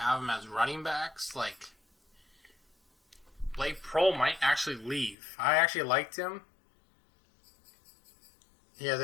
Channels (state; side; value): drops out; right; at 5.2 s